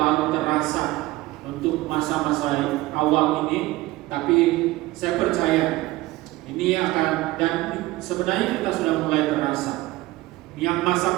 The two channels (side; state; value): left; quieter; 18.6 dB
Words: terasa untuk masa-masa awal ini, tapi saya percaya ini akan, dan sebenarnya kita sudah mulai terasa. Yang masak